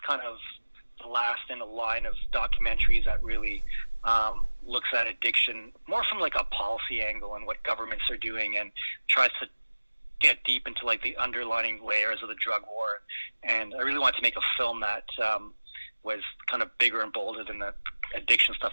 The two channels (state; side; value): inverted; both; correlation -1.00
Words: kind of the last in a line of documentaries that really looks at addiction more from like a policy angle and what governments are doing, and tries to get deep into like the underlying layers of the drug war. And I really wanted to make a film that was kind of bigger and bolder than the addiction